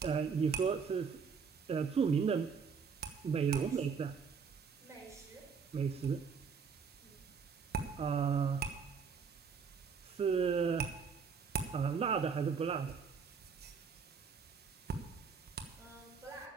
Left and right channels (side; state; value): left; quieter; 5.9 dB